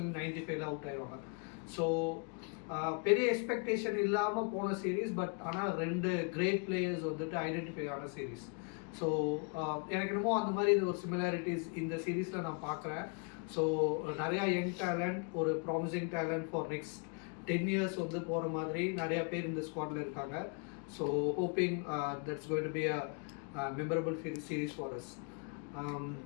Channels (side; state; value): right; quieter; 37.3 dB